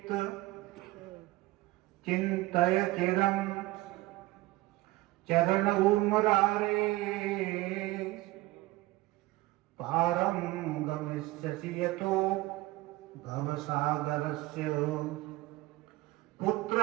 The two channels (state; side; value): quieter; left; 19.2 dB